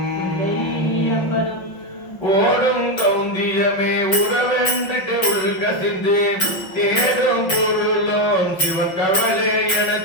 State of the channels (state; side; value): late; right; 5.8 ms